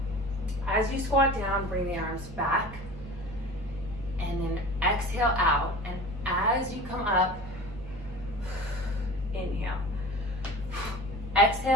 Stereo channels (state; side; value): normal; both; correlation 0.37